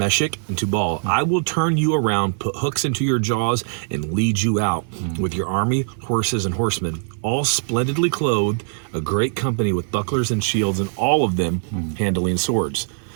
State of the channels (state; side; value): silent; left; 58 dB below the other